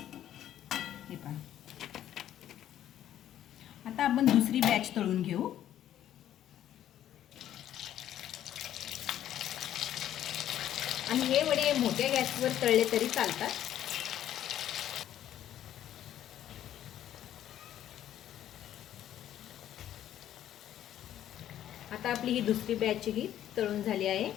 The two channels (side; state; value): right; quieter; 11.5 dB